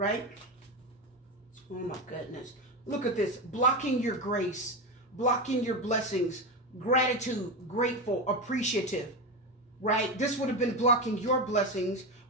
Oh my goodness. Look at this. Blocking your grace, blocking your blessings, gratitude, grateful, appreciative, right? This would have been blocking your blessings,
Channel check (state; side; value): normal; both; correlation 0.16